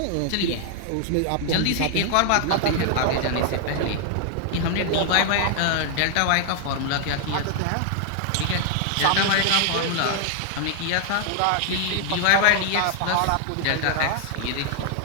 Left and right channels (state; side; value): different; both; correlation 0.00